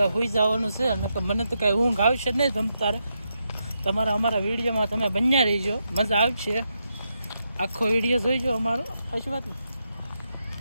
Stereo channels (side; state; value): both; inverted; correlation -0.84